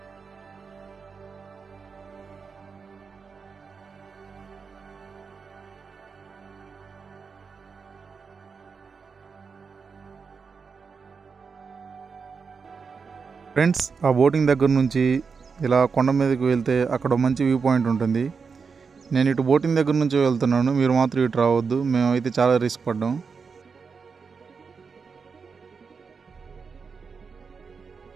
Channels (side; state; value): left; quieter; 5.4 dB